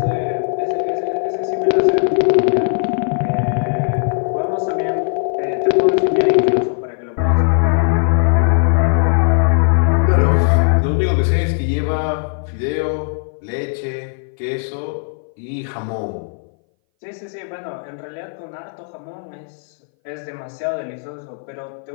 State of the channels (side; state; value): right; silent; 61 dB below the other